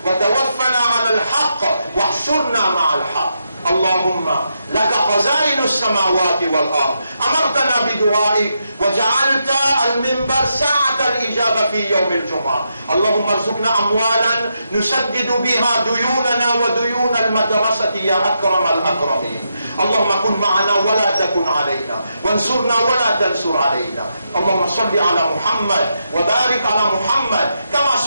وتوفنا على الحق واحشرنا مع الحق. اللهم لك خزائن السماوات والأرض، أمرتنا بدعائك وجعلت المنبر ساعة الإجابة في يوم الجمعة. اللهم ارزقنا أموالا نسدد بها ديوننا وديون المدرسة يا أكرم الأكرمين. اللهم كن معنا ولا تكن علينا، وانصرنا ولا تنصر علينا. اللهم صل على محمد وبارك على محمد كما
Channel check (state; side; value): inverted; both; correlation -0.83